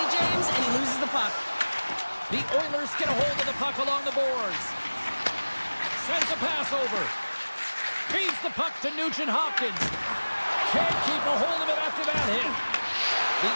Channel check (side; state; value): both; inverted; correlation -1.00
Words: James, and he loses the puck. The Oilers get a hold of the puck along the boards. Sends a pass over. Feeds the puck to Nugent-Hopkins. Can't keep a hold of it after that hit. The